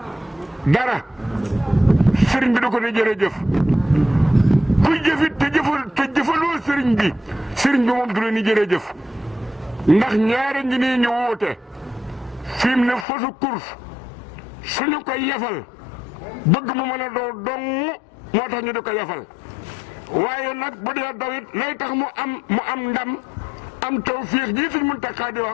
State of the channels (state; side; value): drops out; right; at 13.1 s